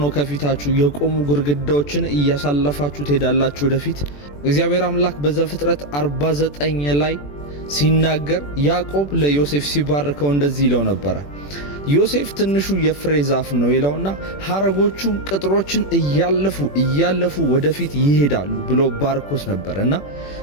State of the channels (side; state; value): right; late; 21 ms